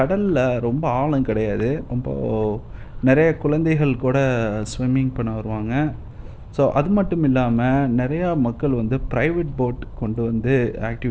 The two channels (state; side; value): identical; both; correlation 1.00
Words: ரொம்ப ஆழம் கிடையாது. ரொம்ப நெறைய குழந்தைகள் கூட ஸ்விம்மிங் பண்ண வருவாங்க. ஸோ அது மட்டும் இல்லாம நெறையா மக்கள் வந்து பிரைவேட் போட் கொண்டு வந்து